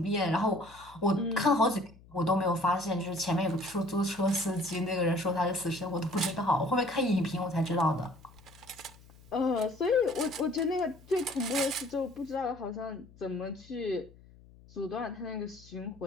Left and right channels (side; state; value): left; noise; hum, 23 dB below the sound